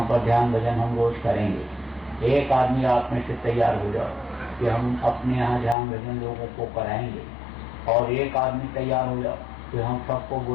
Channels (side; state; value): right; drops out; at 5.8 s